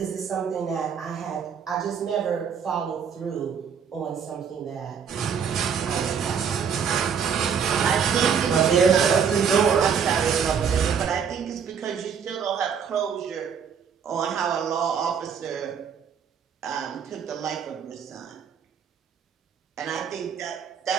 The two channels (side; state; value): left; quieter; 7.2 dB